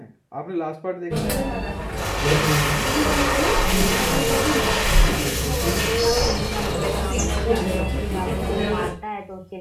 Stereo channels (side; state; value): both; identical; correlation 1.00